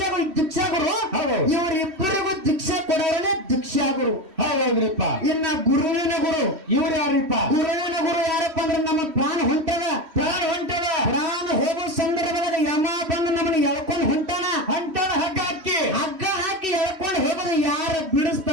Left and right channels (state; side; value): late; left; 3.1 ms